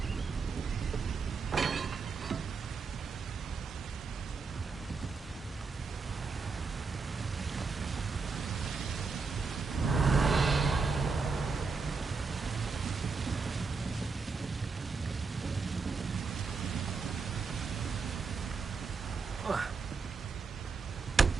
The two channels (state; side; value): quieter; left; 4.7 dB